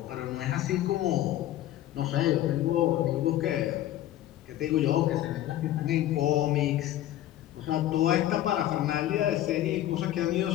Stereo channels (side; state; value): right; quieter; 13.3 dB